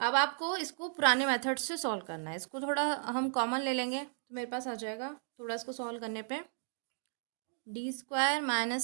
आपको इसको पुराने मेथड से सॉल्व करना है। इसको थोड़ा हम कॉमन ले लेंगे तो मेरे पास आ जाएगा, थोड़ा इसको सॉल्व करने पे d square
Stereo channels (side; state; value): left; silent; digital silence